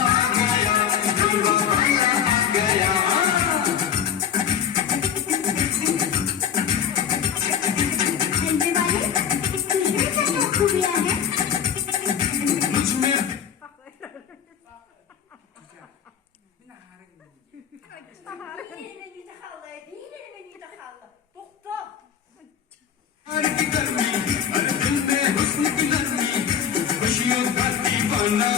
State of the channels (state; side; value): quieter; right; 8.4 dB